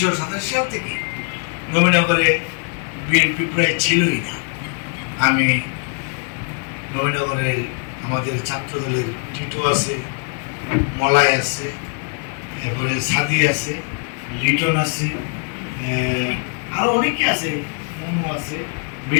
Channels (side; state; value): right; quieter; 39.3 dB